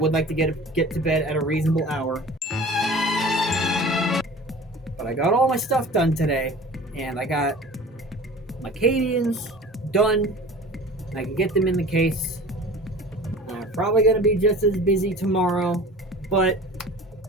like to get to bed at a reasonable hour. But I got all my stuff done today, and I got my Cadians done. I can get them in the case. I'm probably going to be just as busy tomorrow, but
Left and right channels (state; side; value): normal; both; correlation 0.42